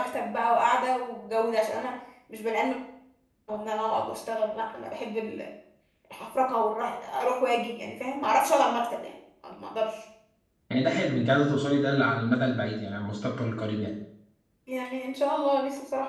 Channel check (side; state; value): both; identical; correlation 1.00